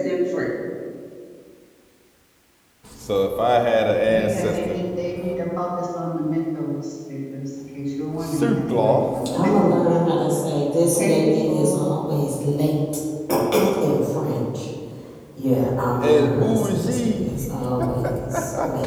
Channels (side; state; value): both; identical; correlation 1.00